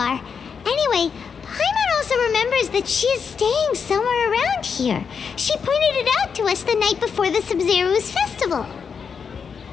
Anyway, Paimon also remembers that she is staying somewhere around here. She pointed it out to us the night before the Sabzeruz festival.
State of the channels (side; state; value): right; quieter; 6.3 dB